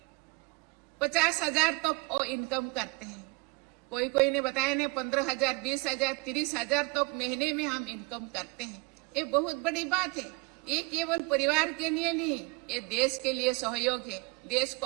50,000 तक वो इनकम करते हैं। कोई ने बताया ने 15,000, 20,000, 30,000 तक महीने में हम इनकम करते हैं। ये बहुत बड़ी बात है। ये केवल परिवार के लिए नहीं, ये देश के लिए सहयोग है। देश को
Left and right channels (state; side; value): quieter; left; 26.8 dB